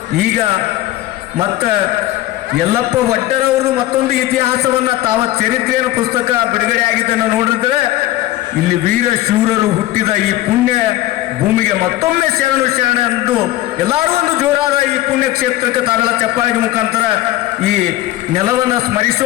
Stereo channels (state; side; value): quieter; right; 15.6 dB